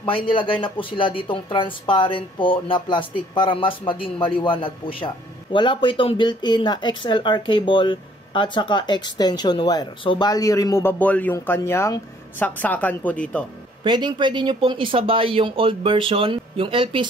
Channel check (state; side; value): normal; both; correlation 0.61